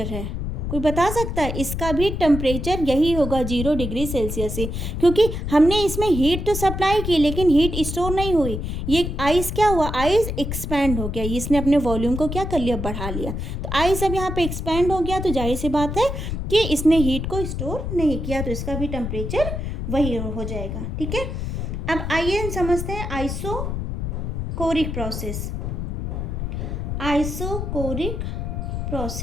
है, कोई बता सकता है? इसका भी टेम्परेचर यही होगा 0 डिग्री सेल्सियस ही, क्योंकि हमने इसमें हीट तो सप्लाई की लेकिन हीट स्टोर नहीं हुई। ये आइस क्या हुआ, आइस एक्सपैंड हो गया, इसने अपने वॉल्यूम को क्या कर लिया, बढ़ा लिया। तो आइस अब यहाँ पे एक्सपैंड हो गया तो जाहिर सी बात है कि इसने हीट को स्टोर नहीं किया, तो इसका भी टेम्परेचर वही हो जाएगा। ठीक है, अब आइए हम समझते हैं isochoric process. Isochoric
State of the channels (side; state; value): left; noise; rumble, 4 dB below the sound